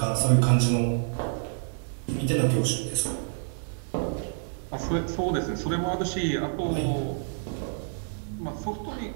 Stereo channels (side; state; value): left; silent; 59 dB below the other